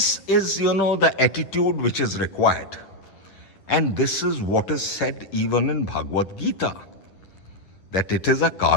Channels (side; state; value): right; late; 10 ms